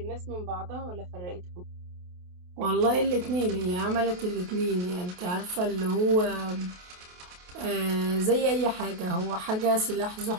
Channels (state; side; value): late; left; 28 ms